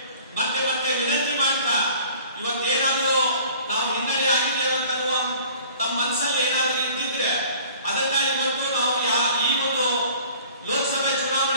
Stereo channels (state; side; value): inverted; both; correlation -0.48